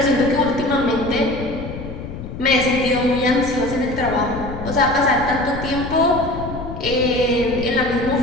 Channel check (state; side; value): noise; left; rumble, 9 dB below the sound